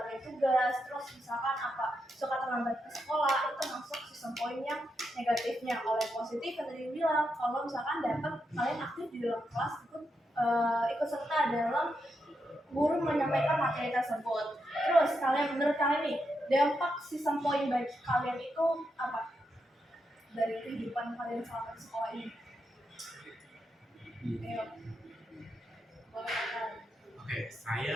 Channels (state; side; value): normal; both; correlation 0.84